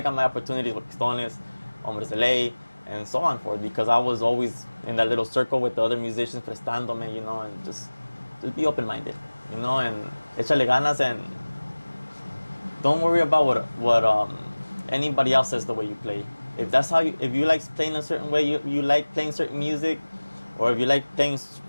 got my opportunities with Pistones, Hombres de Ley, and so on forth, because I was always in that little circle with the other musicians prestándome, you know, and just be open-minded, you know, and échale ganas, and don't worry about what anybody else says the way you play. If that's how if you like playing a certain way, you like playing certain music, or if you like playing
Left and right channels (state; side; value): inverted; both; correlation -1.00